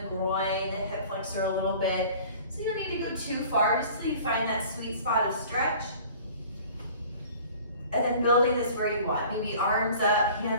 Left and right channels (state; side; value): inverted; both; correlation -0.47